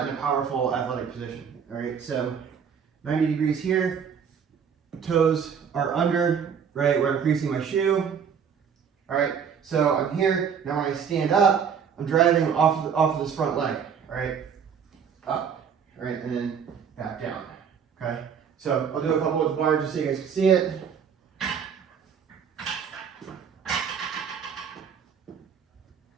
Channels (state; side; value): quieter; left; 7.2 dB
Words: in a powerful athletic position, all right? So 90 degrees here, toes are under, right, where I'm creasing my shoe, all right? So I'm here, now when I stand up, I'm driving off of this front leg, all right? Up, all right, and then back down, okay? So I'll do a couple with the bar just so you guys can see it.